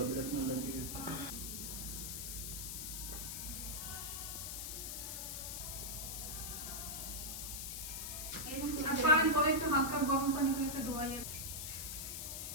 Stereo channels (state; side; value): noise; left; hiss, 5 dB below the sound